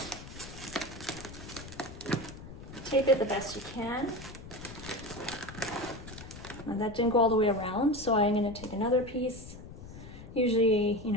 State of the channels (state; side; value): noise; left; rumble, 14 dB below the sound